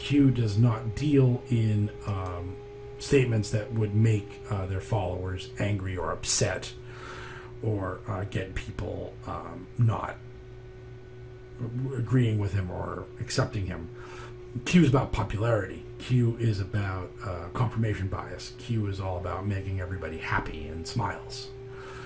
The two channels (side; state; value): both; identical; correlation 1.00